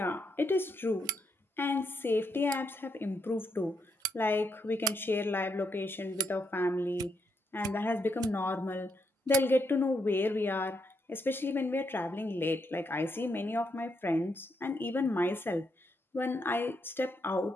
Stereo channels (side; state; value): both; normal; correlation 0.79